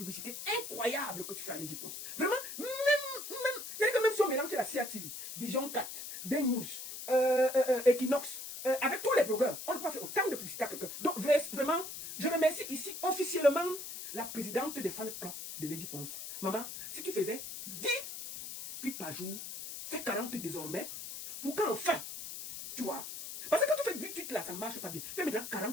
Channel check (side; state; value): left; noise; hiss, 9 dB below the sound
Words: incroyable que tu fais à Lady Ponce. Vraiment, c'est-à-dire que même si on mélange la CIA TV, Vision 4, Ben News, Equinox, avec tous les blogueurs, on ne peut pas faire autant de publicité à quelqu'un. Donc vraiment, je remercie ici officiellement la présidente des fan clubs de Lady Ponce. Maman, si tu faisais 10 tweets par jour, fais 40 désormais, pour qu'enfin, tu vois. Parce que quand tu fais 10 tweets là, ça ne marche pas bien. Fais maintenant